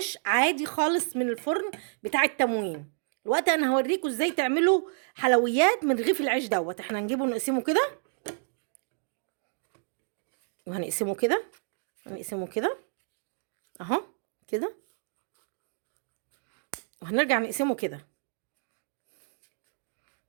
عادي خالص من الفرن بتاع التموين. الوقت انا هوريكم ازاي تعملوا حلويات من رغيف العيش دوت. احنا هنجيبه نقسمه كده، وهنقسمه كده، هنقسمه كده اهو كده، وهنرجع نقسمه كده.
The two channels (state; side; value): silent; left; 58 dB below the other